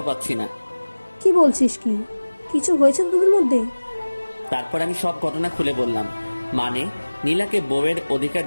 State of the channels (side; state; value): both; inverted; correlation -1.00